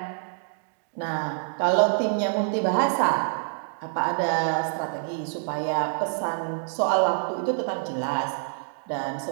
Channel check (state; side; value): silent; left; digital silence